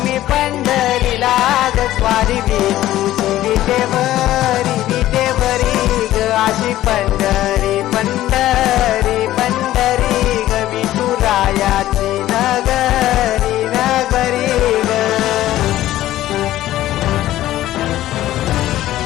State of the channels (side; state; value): right; quieter; 14.4 dB